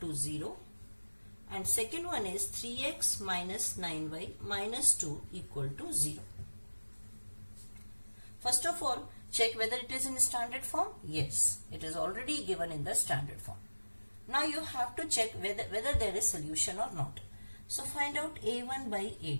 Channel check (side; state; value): both; inverted; correlation -1.00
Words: 0. And second one is 3x minus 9y minus 2 equal to 0. First of all, check whether it is in standard form. Yes, it is already given in the standard form. Now you have to check whether there is solution or not. So find out a1 by